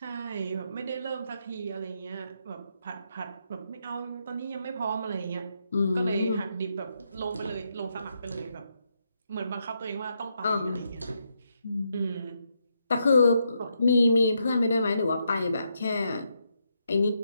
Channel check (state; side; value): inverted; both; correlation -0.80